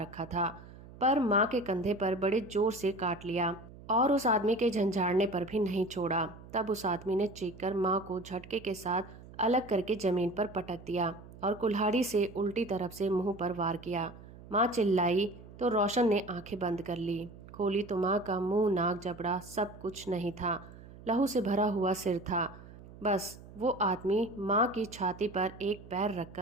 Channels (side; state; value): right; noise; hum, 18 dB below the sound